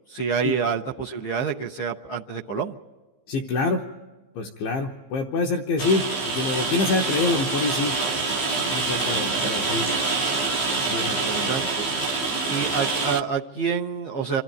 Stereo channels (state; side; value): late; right; 15 ms